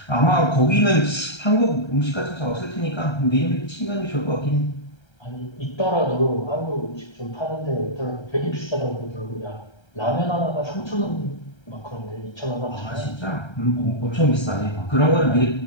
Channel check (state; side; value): late; right; 1.3 ms